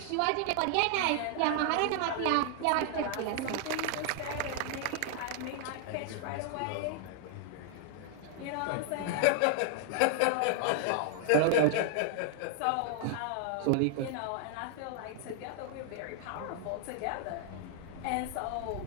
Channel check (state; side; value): different; both; correlation 0.00